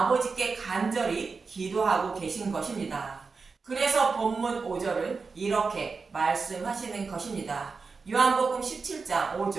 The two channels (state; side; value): quieter; left; 4.6 dB